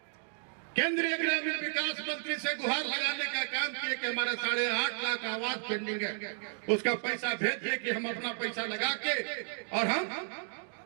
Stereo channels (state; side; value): silent; left; 56 dB below the other